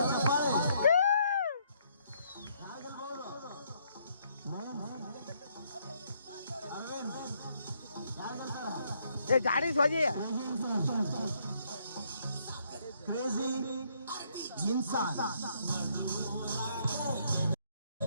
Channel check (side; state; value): both; inverted; correlation -0.71